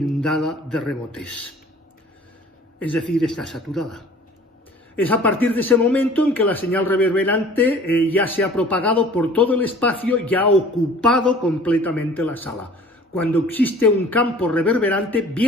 de rebotes. Es decir, está saturada. Es a partir de ese momento en que la señal reverberante ya se ha propagado por todo el espacio y ha ocupado completamente la sala, cuando existe un campo reverberante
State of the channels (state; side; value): normal; both; correlation 0.48